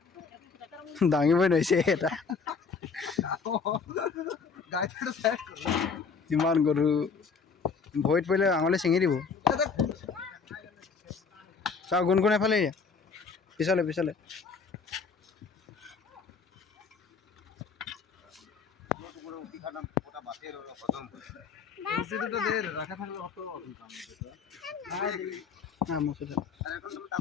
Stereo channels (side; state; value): right; quieter; 5.3 dB